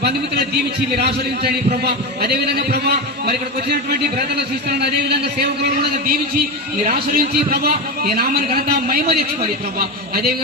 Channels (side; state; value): both; normal; correlation 0.18